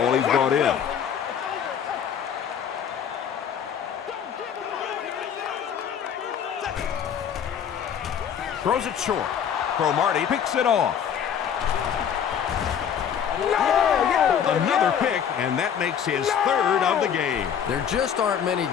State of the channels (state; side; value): quieter; right; 8.3 dB